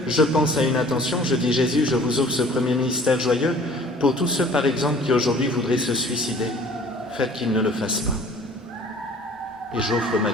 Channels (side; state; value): both; normal; correlation 0.50